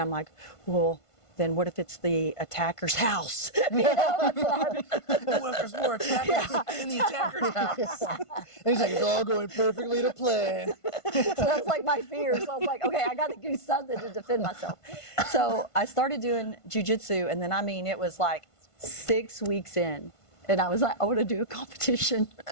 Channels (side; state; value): right; late; 1.5 ms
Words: I'm like, well, then what if it's the attacker's house? You know, that's what What if there's more attackers in the attacker's house? And he's like, it's all going perfectly to plan. So that's like my fear. So I was like, okay, I got to do something to defend myself. So I started doing jiu-jitsu, and then, I mean, it was like 6 weeks in, and I was like, I want to do a competition.